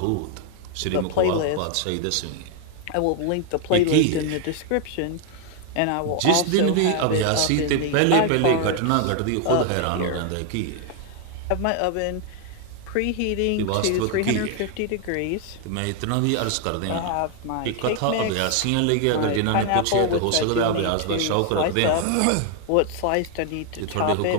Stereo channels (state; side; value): different; both; correlation 0.00